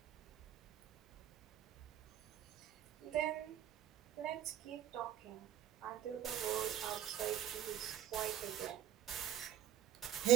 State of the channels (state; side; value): quieter; left; 11.3 dB